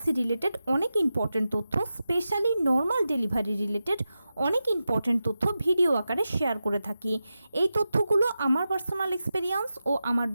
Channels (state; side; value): inverted; both; correlation -0.91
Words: রিলেটেড অনেক ইম্পর্টেন্ট তথ্য, স্পেশালি নর্মাল ডেলিভারি রিলেটেড অনেক ইম্পর্টেন্ট তথ্য ভিডিও আকারে শেয়ার করে থাকি। এই তথ্যগুলো আমার পার্সোনাল এক্সপেরিয়েন্স ও আমার